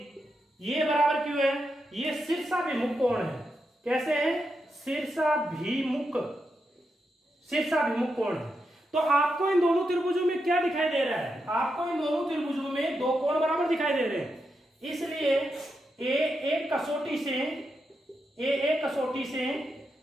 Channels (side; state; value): both; normal; correlation 0.85